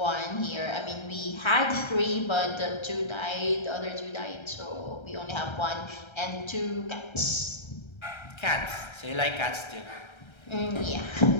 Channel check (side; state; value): right; late; 1.3 ms